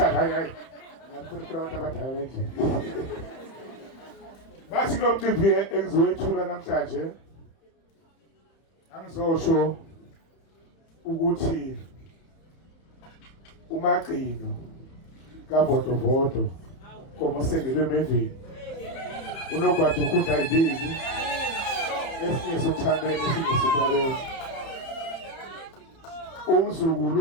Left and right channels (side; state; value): right; late; 30 ms